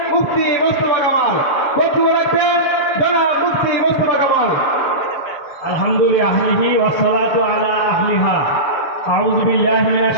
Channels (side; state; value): right; late; 7.1 ms